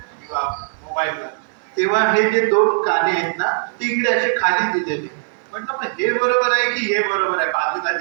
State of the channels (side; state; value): left; silent; digital silence